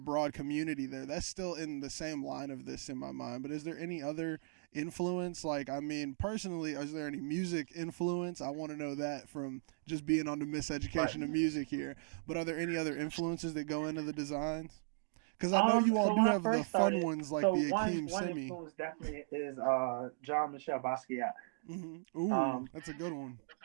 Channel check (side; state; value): left; silent; digital silence